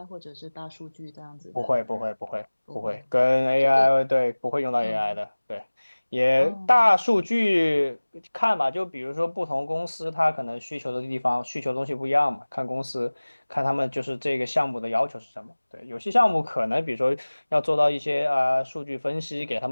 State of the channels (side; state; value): both; inverted; correlation -1.00